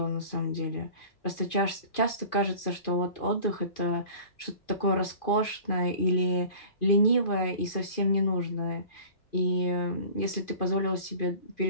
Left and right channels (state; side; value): late; right; 2.5 ms